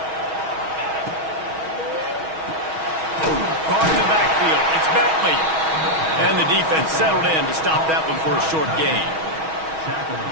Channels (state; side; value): late; left; 6.3 ms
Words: Caught in the backfield. It's Bentley. And the defense settled in to stop that one for a short gain.